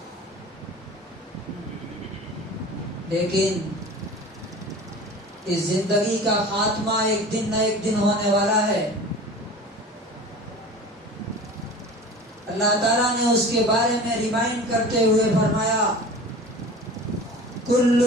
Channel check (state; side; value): normal; both; correlation 0.38